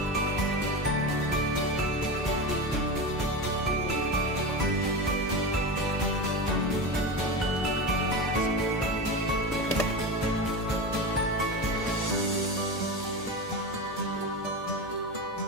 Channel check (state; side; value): normal; both; correlation 0.23